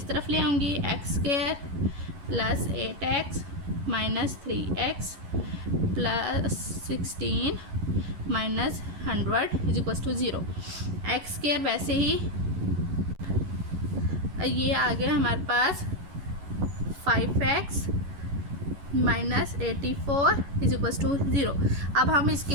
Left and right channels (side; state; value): left; late; 11 ms